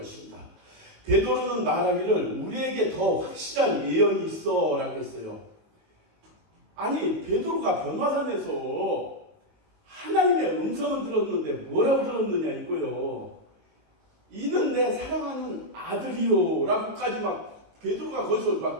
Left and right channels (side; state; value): left; late; 19 ms